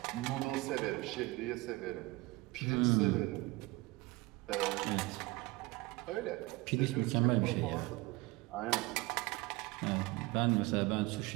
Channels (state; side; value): quieter; left; 21.9 dB